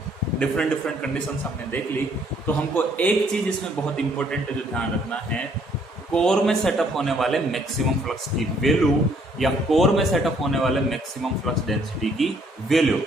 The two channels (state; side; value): normal; both; correlation 0.65